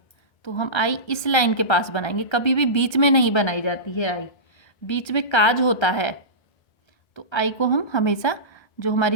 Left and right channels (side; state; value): right; late; 1.3 ms